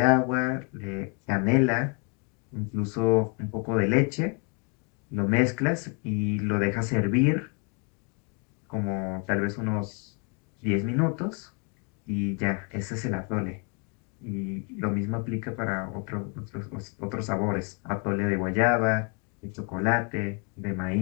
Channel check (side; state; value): right; quieter; 36.3 dB